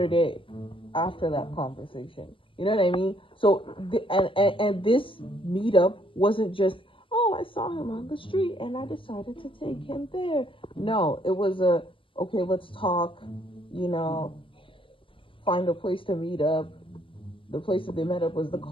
day after that conversation. You know what I mean? So, and this meetup wasn't just, oh, I saw him on the street and I decided to take him there. No, it was okay, let's talk, find a place to meet up. The place that they met up was the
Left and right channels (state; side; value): late; right; 0.25 ms